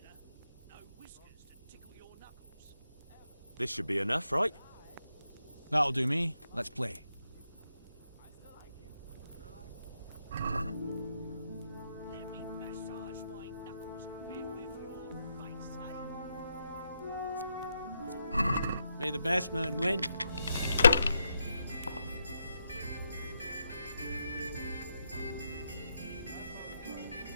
This should be enough, right? That'll do me. Let's play. Let me massage my knuckles a bit with your face, eh? May the best man win.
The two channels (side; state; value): both; inverted; correlation -0.82